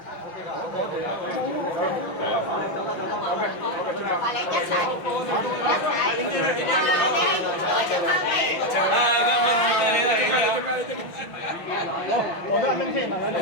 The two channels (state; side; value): late; right; 5.9 ms